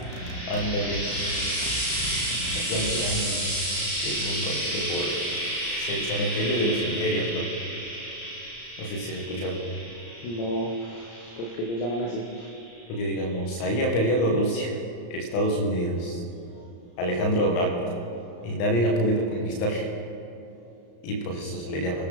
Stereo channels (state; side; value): late; right; 34 ms